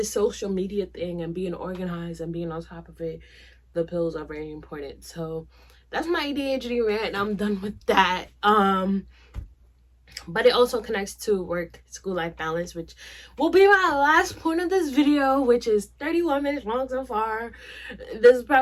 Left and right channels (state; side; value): identical; both; correlation 1.00